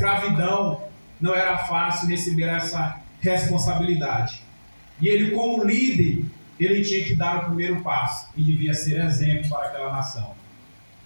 não era fácil receber essa responsabilidade. E ele, como líder, ele tinha que dar o primeiro passo e devia ser exemplo para aquela nação.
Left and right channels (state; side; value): inverted; both; correlation -1.00